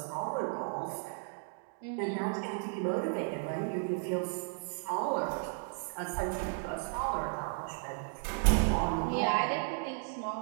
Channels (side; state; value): left; silent; 55 dB below the other